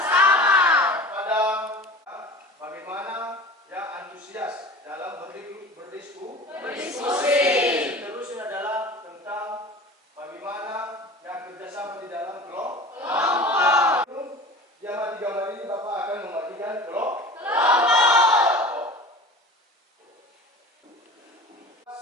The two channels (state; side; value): normal; both; correlation 0.38